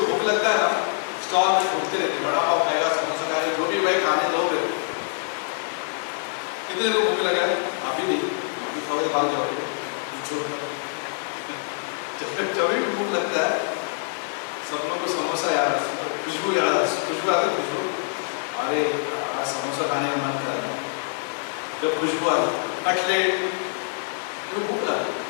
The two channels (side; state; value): right; silent; digital silence